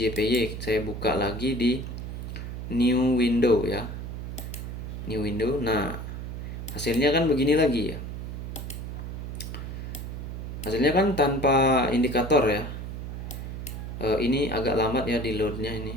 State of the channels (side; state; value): right; noise; hum, 7 dB below the sound